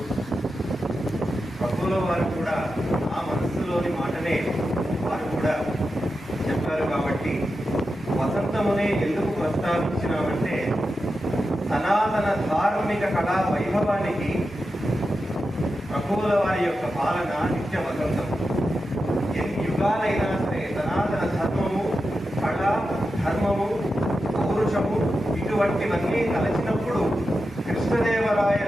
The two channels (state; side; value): normal; both; correlation 0.90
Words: ప్రభువుల వారు కూడా ఆ మనస్సులోని మాటనే వారు కూడా చెప్పారు. కాబట్టి వసంతమునే ఎందుకు ప్రస్తావించినామంటే సనాతన ధార్మిక కళా వైభవానికి ప్రభువుల వారి యొక్క పాలన నిత్య వసంతం. ఎన్ని యుగాలైనా సరే సనాతన ధర్మము, కళ, ధర్మము, పౌరుషము ఇటువంటివన్నీ కలిసినప్పుడు